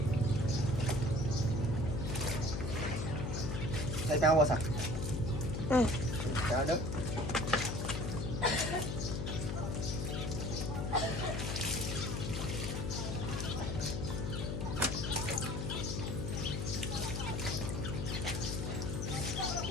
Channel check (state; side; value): noise; left; hum, 2 dB below the sound